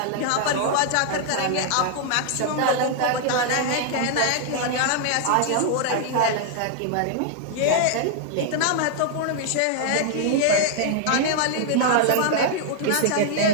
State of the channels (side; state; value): both; different; correlation 0.00